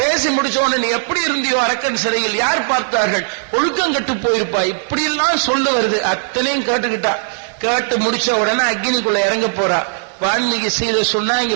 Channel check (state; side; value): silent; left; digital silence